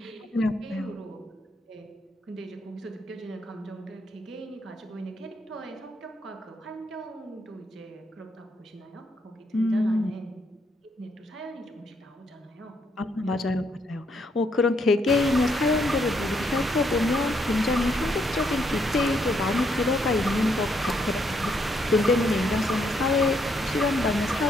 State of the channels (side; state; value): both; normal; correlation 0.74